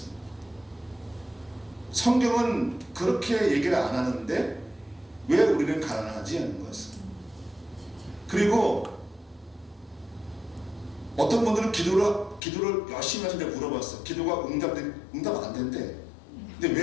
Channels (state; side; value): drops out; right; at 12.4 s